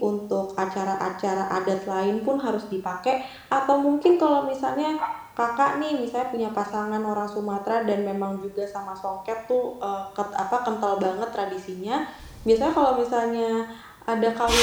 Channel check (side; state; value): both; identical; correlation 1.00